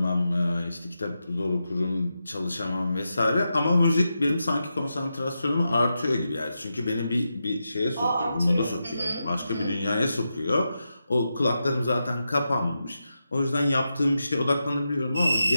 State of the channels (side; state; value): both; inverted; correlation -0.88